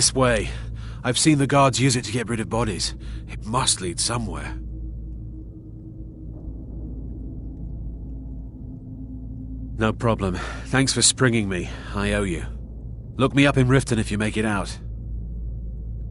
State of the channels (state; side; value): identical; both; correlation 1.00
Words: way. I've seen the guards use it to get rid of bodies. It must lead somewhere. No problem. Thanks for springing me. I owe you. Look me up in Riften if you make it out.